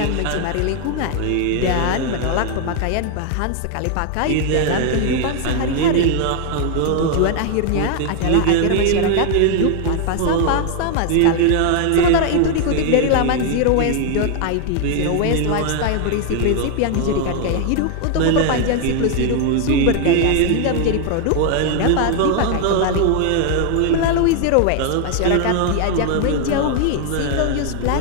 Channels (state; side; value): different; both; correlation 0.00